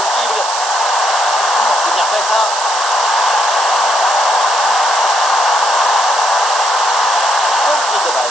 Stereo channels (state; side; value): noise; right; hiss, 6 dB below the sound